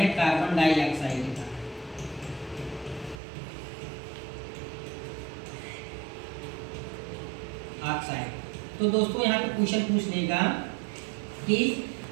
कार्बन डाइऑक्साइड का। ऑक्साइड। तो दोस्तों यहाँ पे क्वेश्चन पूछ लेगा कि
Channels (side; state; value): left; drops out; at 3.2 s